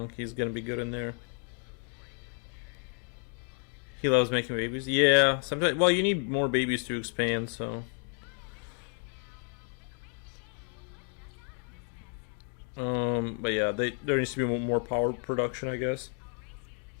He's gonna be good in there. He loves making babies. Yeah, sometimes. Well, you need more babies to expand, so. But yeah, there needs to be more power production, I guess.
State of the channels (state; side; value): quieter; right; 38.8 dB